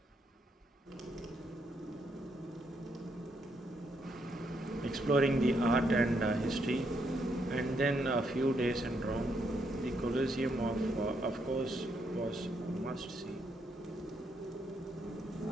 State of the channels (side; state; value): both; normal; correlation 0.76